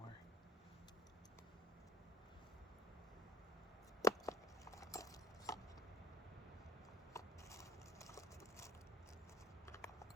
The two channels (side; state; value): both; normal; correlation 0.56